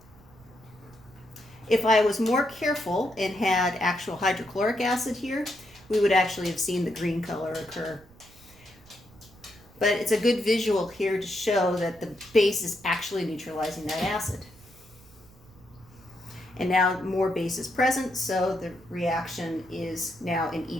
If I was more careful and had actual hydrochloric acid here, we would actually have seen the green color occur. But it's a good visual here to show that the base is actually neutralizing that acid. And now more base is present, so the reaction is now in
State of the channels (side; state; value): right; noise; rumble, 25 dB below the sound